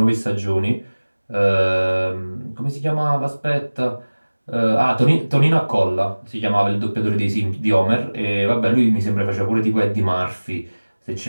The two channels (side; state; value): both; inverted; correlation -1.00